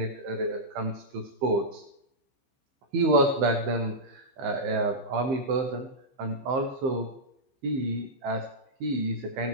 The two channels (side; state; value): left; late; 15 ms